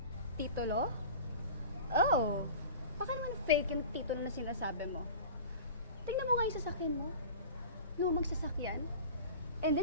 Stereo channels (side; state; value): both; inverted; correlation -0.37